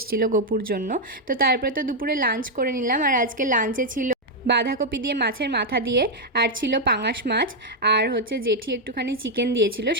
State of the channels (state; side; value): normal; both; correlation 0.00